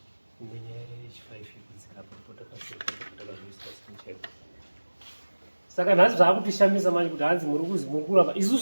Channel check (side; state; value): both; inverted; correlation -1.00